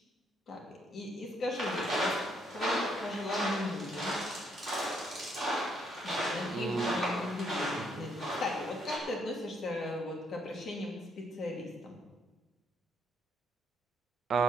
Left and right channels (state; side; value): normal; both; correlation 0.71